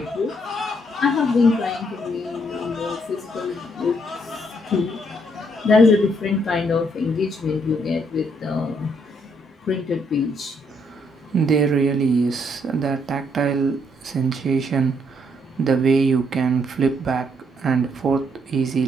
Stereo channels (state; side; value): normal; both; correlation 0.72